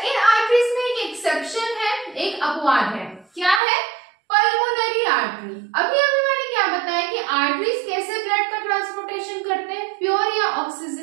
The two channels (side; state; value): left; drops out; at 3.6 s